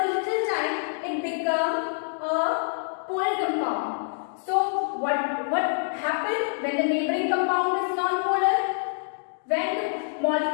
little time, it become a polar compound. So what happened when the neighboring compound is non-polar? When the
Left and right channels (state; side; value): silent; right; digital silence